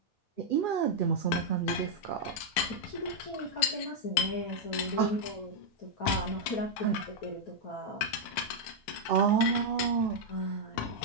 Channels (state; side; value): late; right; 9.7 ms